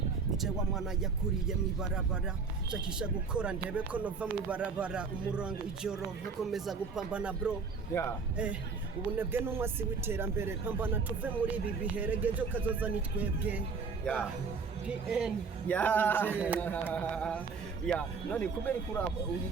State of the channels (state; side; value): quieter; left; 5.0 dB